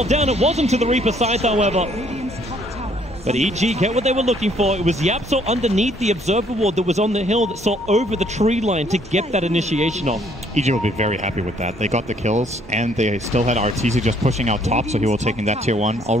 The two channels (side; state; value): both; normal; correlation 0.64